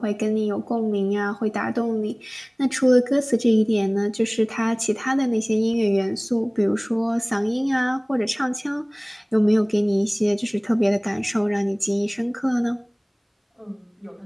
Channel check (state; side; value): identical; both; correlation 1.00